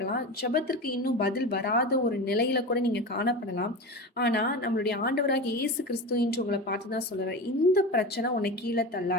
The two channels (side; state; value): both; normal; correlation 0.26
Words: ஜெபத்திற்கு இன்னும் பதில் வராத ஒரு நிலையில கூட நீங்க காணப்படலாம். ஆனா நம்மளுடைய ஆண்டவராக இயேசு கிறிஸ்து இன்று உங்களை பார்த்துதான் சொல்றாரு, இந்த பிரச்சனை உன்னை கீழே